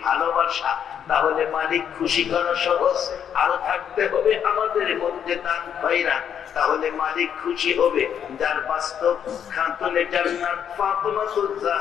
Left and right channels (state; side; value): quieter; right; 8.6 dB